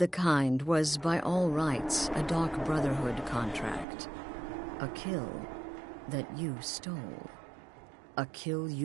Kind was, by all rights, a Dark Brotherhood contract. A kill that you stole. A kill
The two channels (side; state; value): left; drops out; at 3.9 s